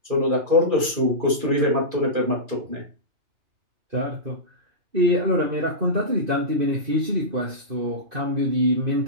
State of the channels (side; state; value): left; late; 2.4 ms